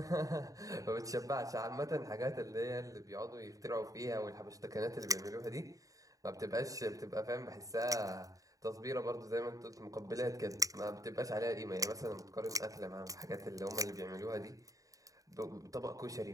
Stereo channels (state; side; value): late; left; 0.16 ms